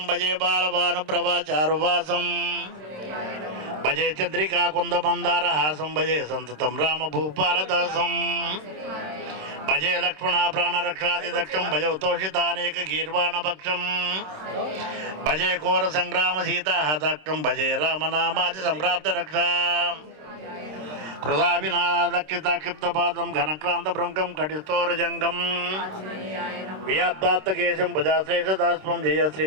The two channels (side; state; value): left; late; 26 ms